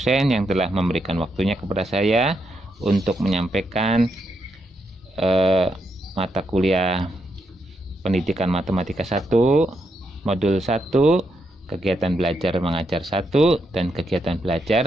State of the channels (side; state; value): both; normal; correlation 0.81